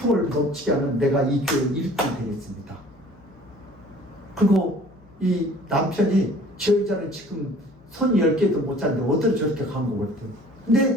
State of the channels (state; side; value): noise; left; hum, 28 dB below the sound